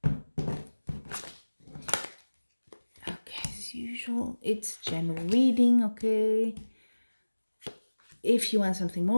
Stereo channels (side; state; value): both; inverted; correlation -1.00